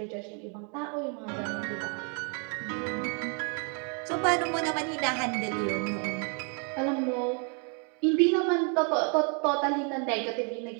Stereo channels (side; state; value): left; quieter; 38.4 dB